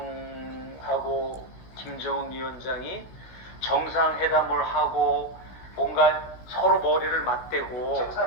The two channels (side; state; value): right; late; 16 ms